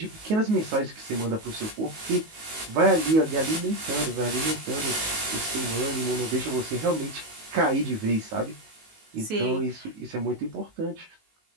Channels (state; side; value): late; left; 19 ms